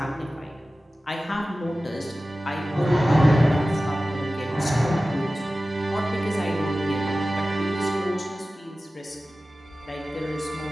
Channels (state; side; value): normal; both; correlation 0.96